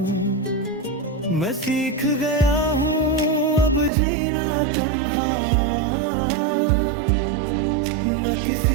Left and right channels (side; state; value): left; drops out; at 3.9 s